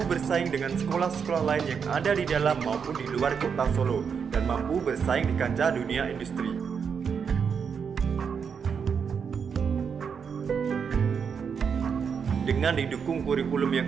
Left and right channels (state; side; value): quieter; left; 6.6 dB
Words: bersaing dengan sekolah-sekolah lain yang ada di dalam maupun di luar kota Solo, dan mampu bersaing di kancah dunia industri. Dengan didukung kurikulum yang